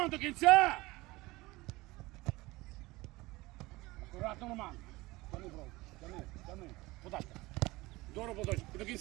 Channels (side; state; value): left; quieter; 20.8 dB